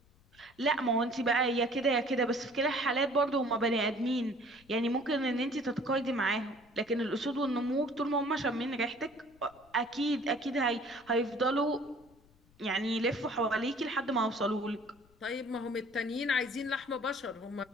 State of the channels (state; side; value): noise; left; rumble, 30 dB below the sound